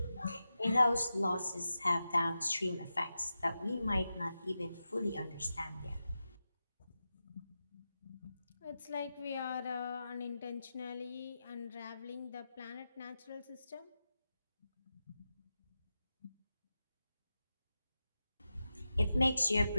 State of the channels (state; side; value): inverted; both; correlation -0.91